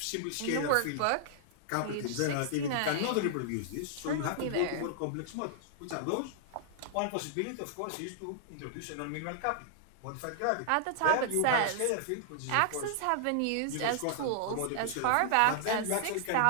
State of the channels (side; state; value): both; different; correlation -0.01